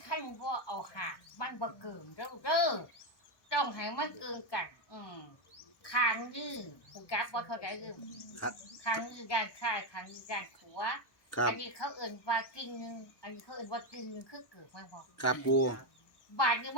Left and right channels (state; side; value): late; right; 1.2 ms